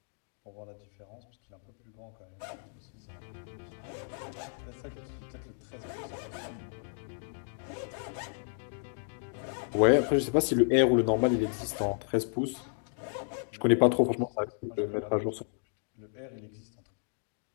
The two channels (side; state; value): right; silent; digital silence